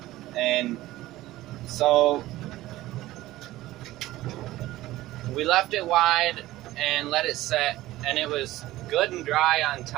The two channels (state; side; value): quieter; left; 16.5 dB